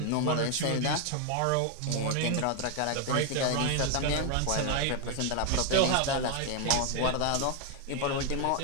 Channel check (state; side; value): different; both; correlation 0.01